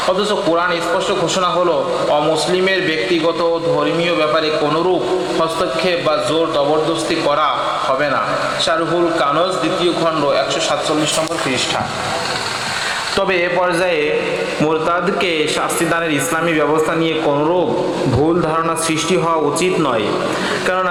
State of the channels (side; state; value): left; noise; rumble, 25 dB below the sound